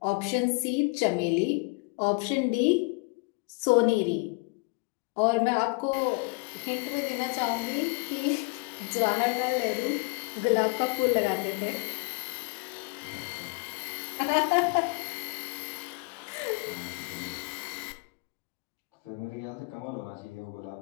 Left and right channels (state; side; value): quieter; right; 30.6 dB